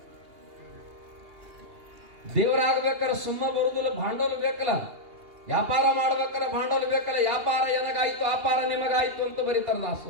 ದೇವರಾಗಬೇಕಾದ್ರೆ ಸುಮ್ಮ ಬರುದಿಲ್ಲ, ಭಾಂಡೋಲ ಬೇಕಲ್ಲ. ವ್ಯಾಪಾರ ಮಾಡ್ಬೇಕಾದ್ರೆ ಭಾಂಡೋಲ ಬೇಕಲ್ಲ. ವ್ಯಾಪಾರ ಏನಾಗಾಯ್ತು ಅಪಾರ ನಿಮಗಾಯ್ತು ಅಂತ ಬರೀತಾರ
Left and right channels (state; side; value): late; left; 2.8 ms